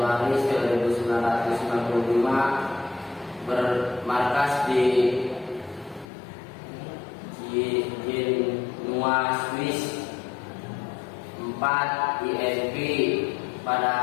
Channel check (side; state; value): right; drops out; at 6.1 s